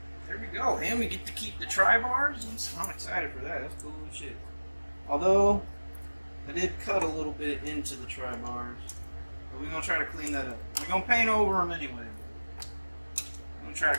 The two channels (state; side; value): inverted; both; correlation -1.00